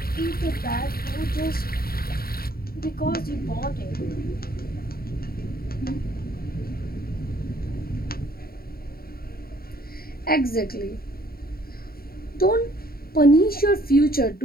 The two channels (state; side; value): late; right; 0.43 ms